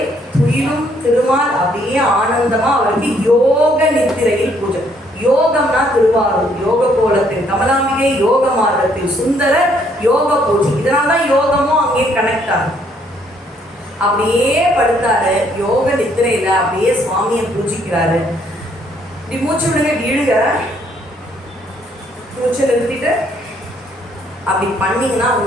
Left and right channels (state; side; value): normal; both; correlation 0.67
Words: துயிலும் திருமால் அப்படியே ஆனந்தமா அவருக்கு யோக நித்திரையில் பூஜை. யோகம்னா திருவாரூர் யோக கோலத்தில் கமலாம்பிகை, யோக மார்க்கத்தில் சுந்தர, யோக பூஜை. இதனால்தான் யோகமும் அங்கே கனெக்ட் ஆகும். அப்படியே படுத்தாரு யோக நித்திரையில, அப்படியே சுவாமியை பூஜிக்கிறாரு. இப்படி மூச்சு விடுங்க, இழுங்க, மூச்சை நிறுத்திட்டு அப்படி பண்ணீங்கன்னா